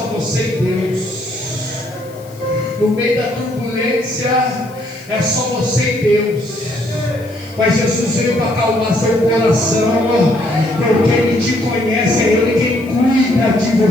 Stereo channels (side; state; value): left; noise; hiss, 24 dB below the sound